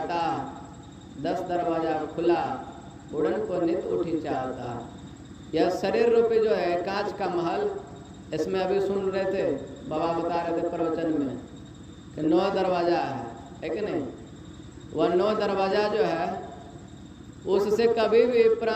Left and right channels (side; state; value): both; identical; correlation 1.00